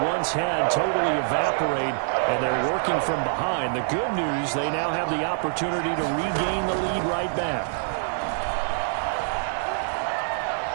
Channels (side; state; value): left; silent; digital silence